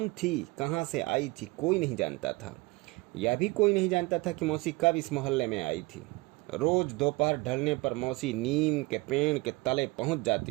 थी, कहाँ से आई थी, कोई नहीं जानता था। यह भी कोई नहीं जानता था कि मौसी कब इस मोहल्ले में आई थी। रोज दोपहर ढलने पर मौसी नीम के पेड़ के तले पहुंच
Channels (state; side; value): quieter; left; 23.6 dB